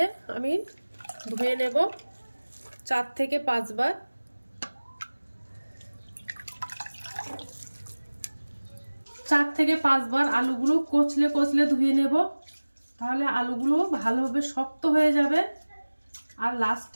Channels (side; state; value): both; inverted; correlation -1.00